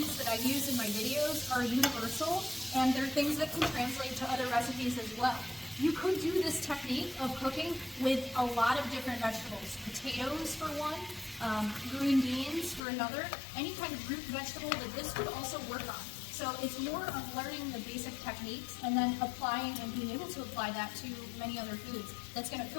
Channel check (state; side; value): drops out; right; at 12.8 s